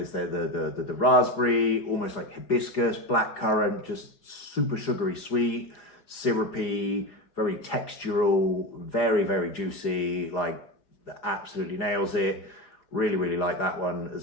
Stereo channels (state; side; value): late; right; 5.0 ms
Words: the raspberry, almost like hibiscus, blackcurrant, just super sugary sweet, syrupy, very textural, very, very juicy, like absolutely nails it. Really, really like that one